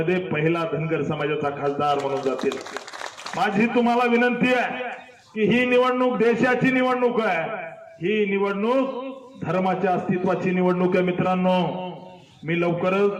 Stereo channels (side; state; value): both; identical; correlation 1.00